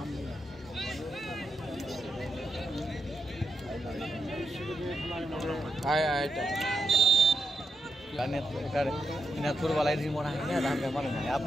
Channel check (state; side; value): normal; both; correlation 0.83